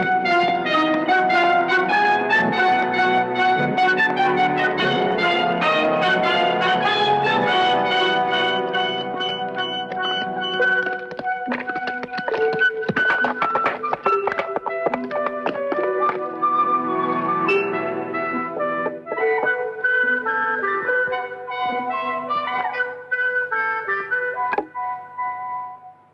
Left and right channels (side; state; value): both; identical; correlation 1.00